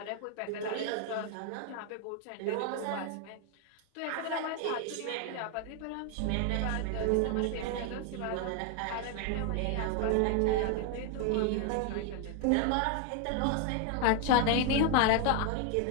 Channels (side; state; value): both; different; correlation 0.01